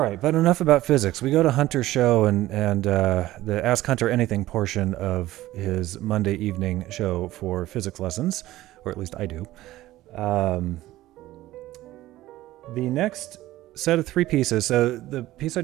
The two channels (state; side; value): quieter; left; 15.9 dB